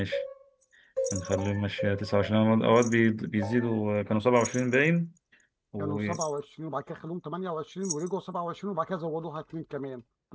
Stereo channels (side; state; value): both; identical; correlation 1.00